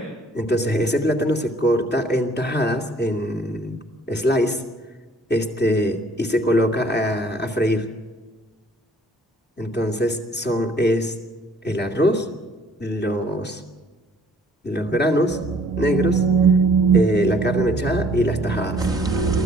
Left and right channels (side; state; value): both; normal; correlation 0.58